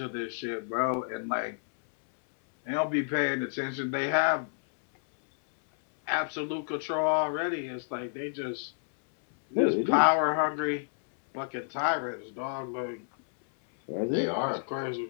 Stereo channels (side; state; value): right; silent; 58 dB below the other